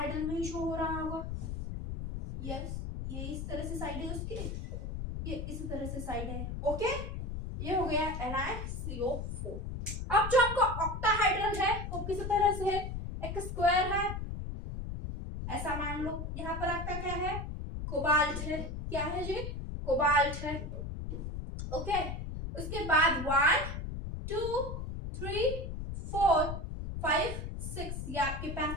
में ही शो हो रहा होगा। यस, ये इस तरह से साइड है उसकी, ये इस तरह से साइड है। ओके, ये हो गया NiCO4। अब जो आपका ऑक्टाहाइड्रल है वो किस तरह से है, एक स्क्वायर है ऐसा मान लो। यहाँ पर आपका क्या है, कोबाल्ट है। क्या है जी, कोबाल्ट है। ओके, उसके बाद 1 2 3 4 5 6 ये आपके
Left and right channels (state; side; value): noise; left; rumble, 5 dB below the sound